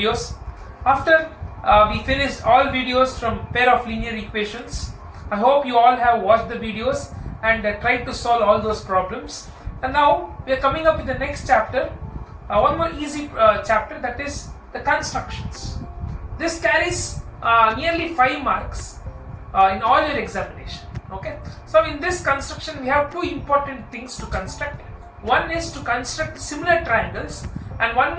After we finished all videos from pair of linear equations, I hope you all have watched the videos and tried to solve all those problems. And now we are coming up with the next chapter, one more easy chapter, that is the constructions. This carries nearly 5 marks in all your examination. Okay, so in this construction we have two important things to construct. One is to construct similar triangles and one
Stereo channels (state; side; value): identical; both; correlation 1.00